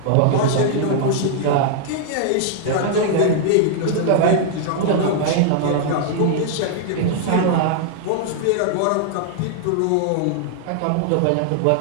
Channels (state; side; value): different; both; correlation -0.01